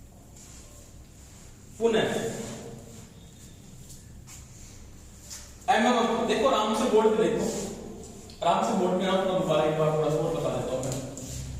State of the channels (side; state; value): both; identical; correlation 1.00